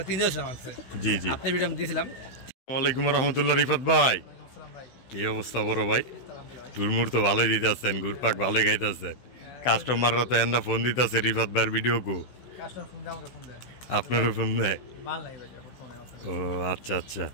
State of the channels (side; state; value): right; late; 16 ms